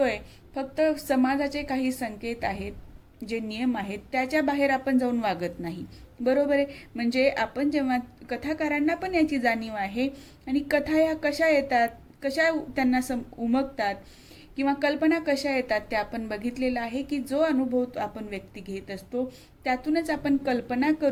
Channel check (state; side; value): identical; both; correlation 1.00